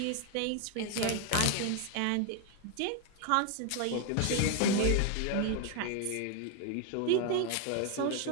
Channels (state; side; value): different; both; correlation 0.00